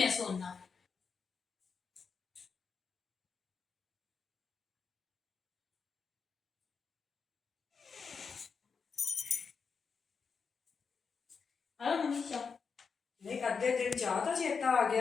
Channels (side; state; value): right; quieter; 5.6 dB